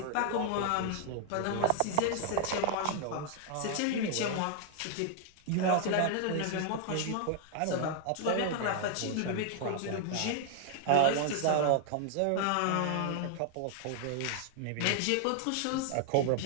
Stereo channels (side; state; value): both; different; correlation 0.00